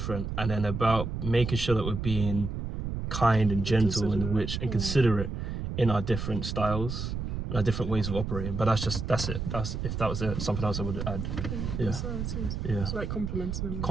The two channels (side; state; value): right; noise; rumble, 4 dB below the sound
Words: and then about making sure that we're being kind and gentle and considerate in our different styles and our different ways of operating. But that's it. That's if that was something else I would add. Yeah. Yeah. It's like complimenting them.